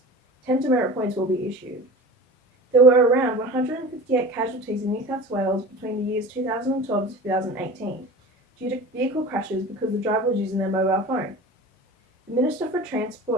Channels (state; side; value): normal; both; correlation 0.36